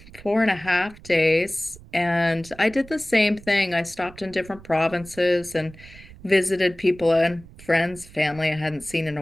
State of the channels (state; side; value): noise; right; rumble, 20 dB below the sound